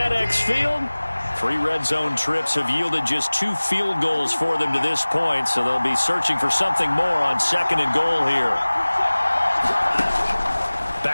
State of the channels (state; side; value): inverted; both; correlation -1.00